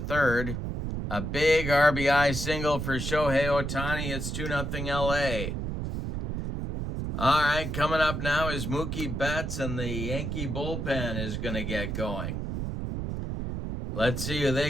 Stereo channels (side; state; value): right; noise; rumble, 3 dB below the sound